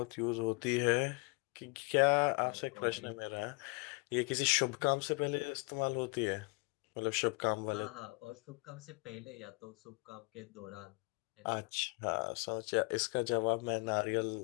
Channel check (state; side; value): quieter; right; 30.8 dB